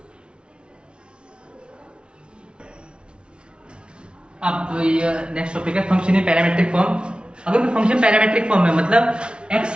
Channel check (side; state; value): left; late; 0.056 ms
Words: अब ये नेक्स्ट टॉपिक है फंक्शन इन पैरामेट्रिक फॉर्म। अगर कोई फंक्शन पैरामेट्रिक फॉर्म में मतलब